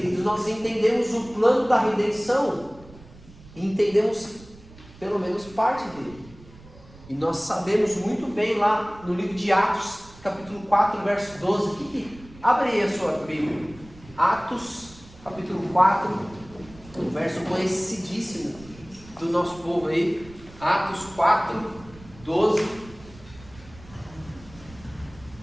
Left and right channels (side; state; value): right; noise; rumble, 21 dB below the sound